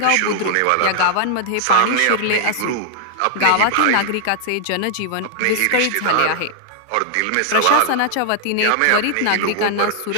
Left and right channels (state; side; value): different; both; correlation 0.00